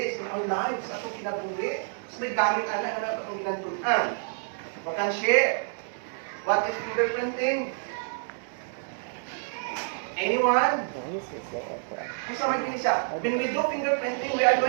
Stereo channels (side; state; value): left; silent; digital silence